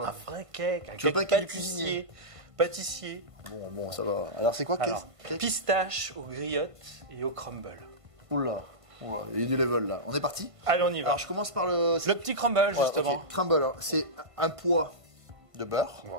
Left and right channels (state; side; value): late; left; 1.5 ms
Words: Un vrai cake. Un Tu veux cake pas un cake cuisinier? Pâtissier. Bon, ça va. Alors, c'est quoi Alors, cake? pistache aux griottes et au crumble. Oula, il y a du level là. On est parti? Allez, on y va. Alors, je commence par le. Le petit crumble, Voilà, justement. ok. Crumble, alors, c'est un poids de beurre.